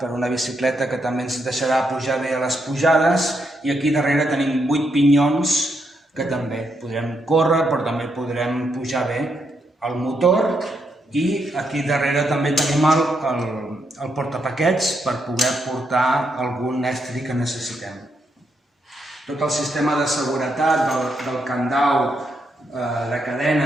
per una bicicleta que també ens deixarà pujar bé a les pujades, i aquí darrere tenim 8 pinyons que també podrem córrer, però també podrem pujar bé el motor, i aquí darrere també tenim el portapaquets per poder portar algun estri que necessitem. Tot el sistema de seguretat del candau de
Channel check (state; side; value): normal; both; correlation 0.79